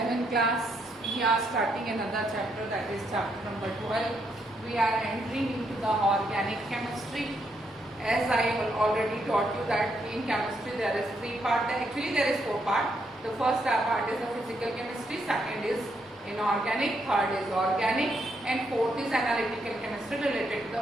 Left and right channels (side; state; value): both; normal; correlation 0.77